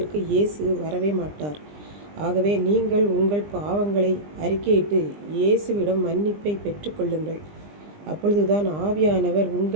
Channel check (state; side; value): late; left; 20 ms